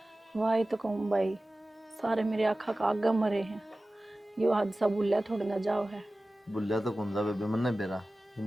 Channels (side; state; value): both; normal; correlation 0.97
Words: वाही तो कहूँ भाई, सारे मेरे आँखा का आगे मरे हैं। यो हादसा भूलिया थोड़ा ना जाओ है। बुल्लिया तो कौन सा बेबे मन नहीं बेरा,